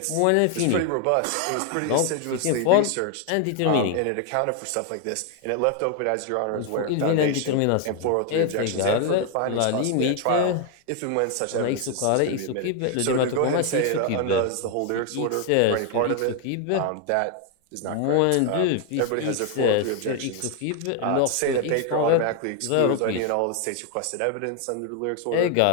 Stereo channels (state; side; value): different; both; correlation 0.00